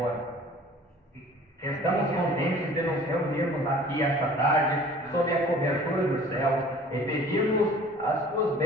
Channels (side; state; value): both; normal; correlation 0.48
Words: Estamos contentes de nos reunirmos aqui esta tarde, sob a cobertura dos céus, e pedirmos as tuas